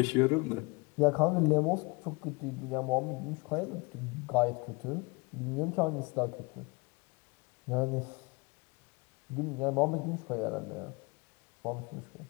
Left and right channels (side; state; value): right; quieter; 27.5 dB